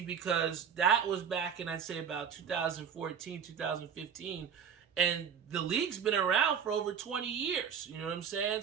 because that was back in, I'd say, about 2014, 2015, and the league's been around for over 20 years. You know what I'm saying?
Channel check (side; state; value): left; quieter; 7.6 dB